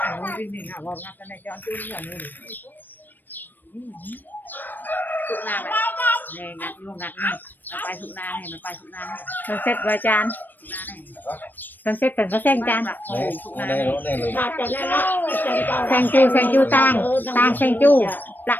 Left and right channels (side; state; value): right; late; 0.091 ms